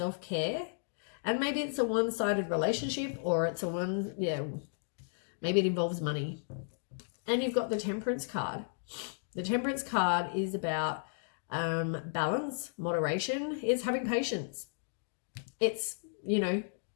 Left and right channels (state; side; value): silent; right; digital silence